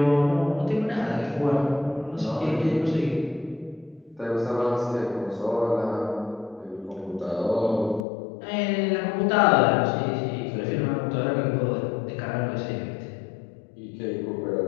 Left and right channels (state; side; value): drops out; right; at 8.1 s